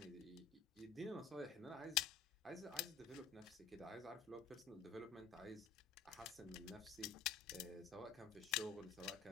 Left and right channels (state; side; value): quieter; right; 6.2 dB